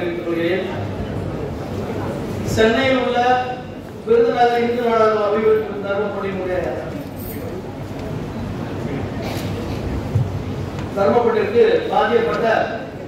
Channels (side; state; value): both; identical; correlation 1.00